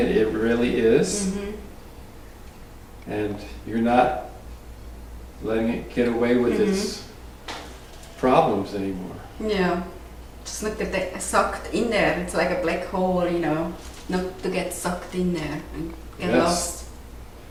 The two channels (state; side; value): identical; both; correlation 1.00